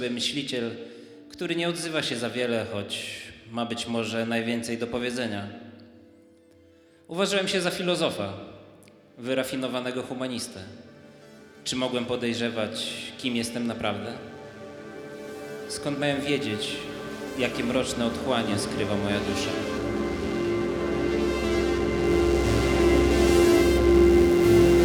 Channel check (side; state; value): both; identical; correlation 1.00